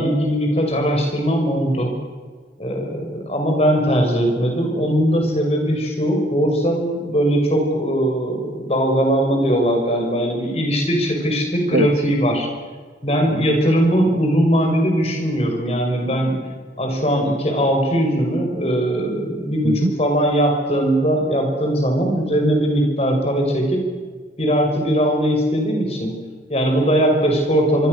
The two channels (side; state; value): both; normal; correlation 0.61